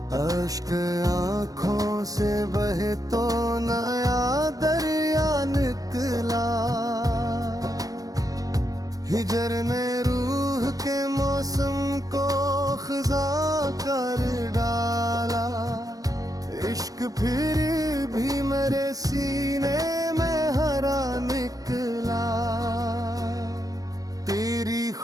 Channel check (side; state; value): left; late; 0.17 ms